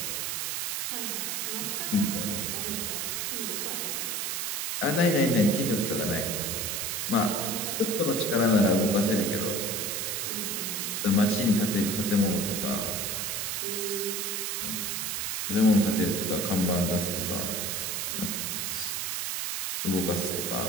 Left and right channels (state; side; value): noise; right; hiss, 1 dB below the sound